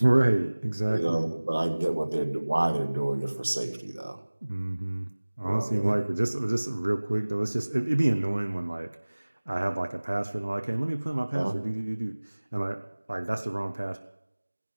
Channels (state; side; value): inverted; both; correlation -1.00